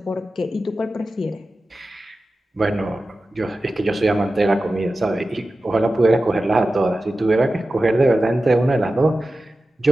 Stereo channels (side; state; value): both; normal; correlation 0.94